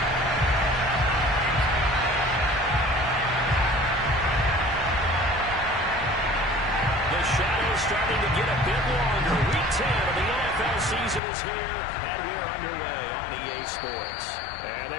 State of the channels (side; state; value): right; drops out; at 11.2 s